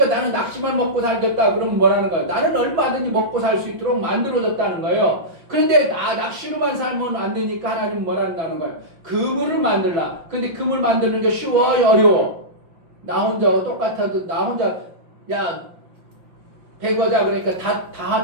나는 낚시만 먹고 살겠다 그러면 뭐라는 거예요? 나는 얼마든지 먹고 살 수 있도록 만들어졌다는 거예요. 그런데 낚시로만 살면 안 되니까 하나님은 뭐라는 거예요? 그물을 만들라. 근데 그물 만드는 게 쉬워요? 어려워? 나 혼자 똑같아도 나 혼자 야 배거자 그러니까 다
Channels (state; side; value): late; left; 5.6 ms